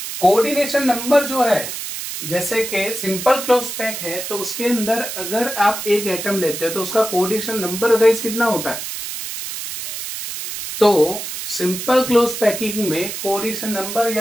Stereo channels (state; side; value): noise; right; hiss, 7 dB below the sound